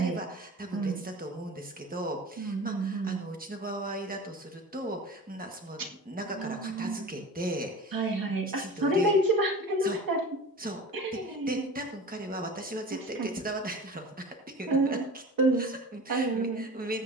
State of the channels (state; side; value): normal; both; correlation 0.36